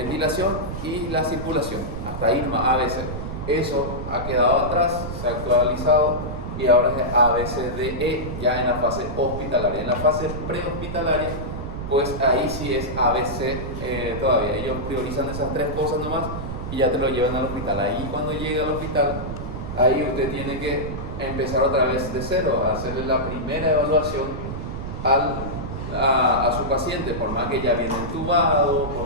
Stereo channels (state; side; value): noise; right; rumble, 6 dB below the sound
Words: y la circulación, hasta ahí nomás ABC. Eso ha quedado atrás, se ha actualizado y ahora es ABCDE ya en la fase hospitalaria. En la fase prehospitalaria, pues ahí sí es ABC todavía. Ellos priorizan esas tres cosas nomás y ya te lo llevan al hospital. Ahí cuando llega al hospital, ahí usted tiene que empezar otra vez de cero, a hacerle la primera evaluación a su paciente, por más que ya viene entubado,